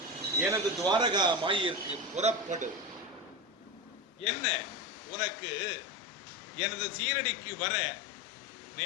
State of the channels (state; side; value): normal; both; correlation 0.21